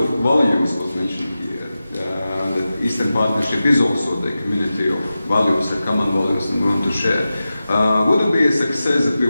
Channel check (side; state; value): both; inverted; correlation -0.93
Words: of values was mentioned here, Eastern Partnership is also the community of values and common values that we want to share. Would it be a success if we